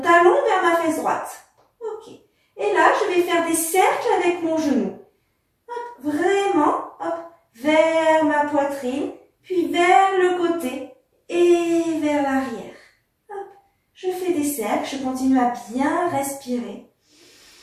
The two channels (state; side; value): identical; both; correlation 1.00